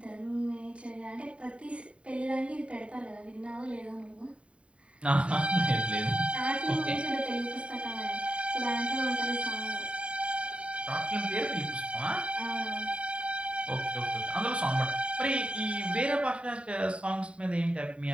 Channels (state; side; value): late; left; 0.060 ms